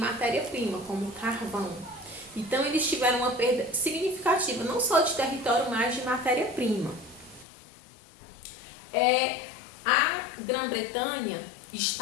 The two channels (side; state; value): right; drops out; at 7.5 s